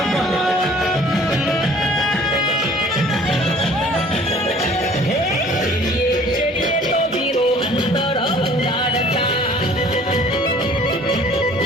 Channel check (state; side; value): normal; both; correlation 0.52